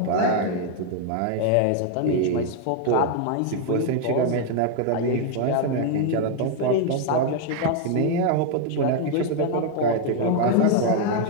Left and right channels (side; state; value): both; different; correlation 0.00